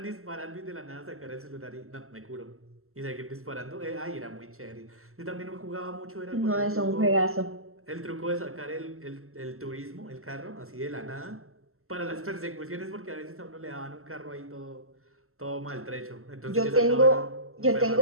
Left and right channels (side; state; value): left; late; 0.63 ms